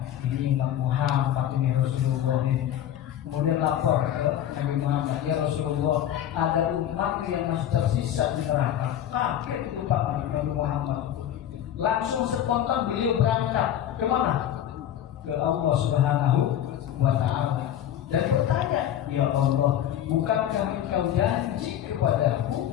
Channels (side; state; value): right; quieter; 10.8 dB